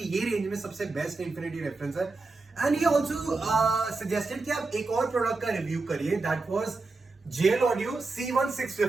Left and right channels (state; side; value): quieter; left; 3.6 dB